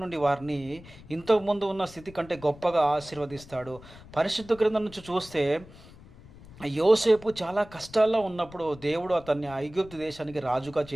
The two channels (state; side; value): noise; left; rumble, 20 dB below the sound